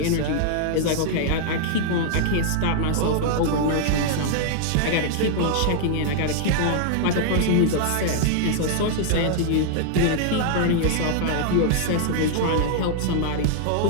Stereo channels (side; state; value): both; different; correlation -0.01